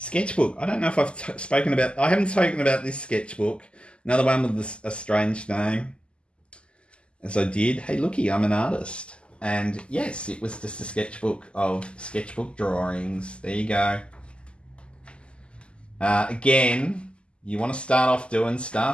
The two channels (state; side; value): late; right; 0.052 ms